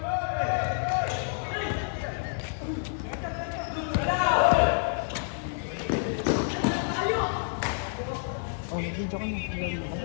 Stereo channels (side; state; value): right; silent; digital silence